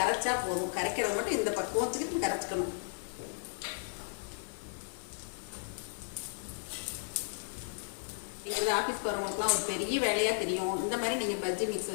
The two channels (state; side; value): silent; right; 55 dB below the other